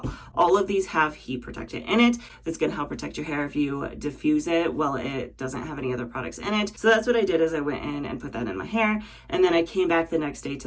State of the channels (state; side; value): identical; both; correlation 1.00